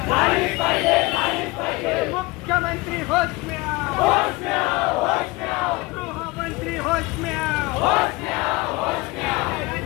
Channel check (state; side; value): quieter; right; 22.9 dB